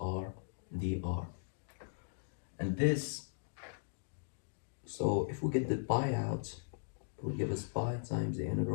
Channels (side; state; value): right; silent; digital silence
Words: r dr. And this, so if we get the pi out, it will give us pi times the